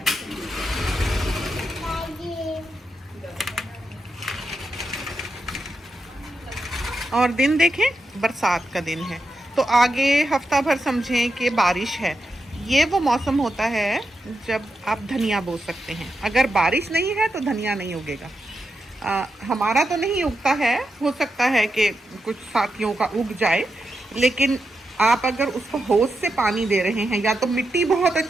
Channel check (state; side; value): normal; both; correlation 0.87